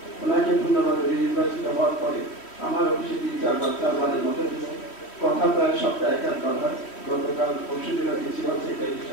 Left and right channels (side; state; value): right; late; 3.1 ms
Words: ওনাকে ধন্যবাদ। নির্বাচিত হওয়ার পরে আমার অফিসে 3-4বারের মতো কথা প্রায় সপ্তাহে একবার হয়। গতকাল পরশু দিন প্রিন্সিপাল সেক্রেটারির